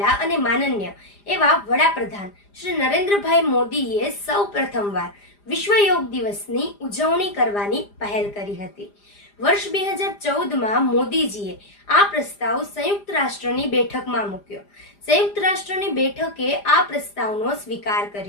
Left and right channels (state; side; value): late; right; 4.9 ms